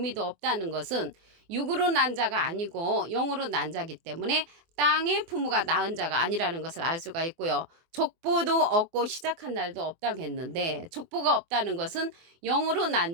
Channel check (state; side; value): late; left; 24 ms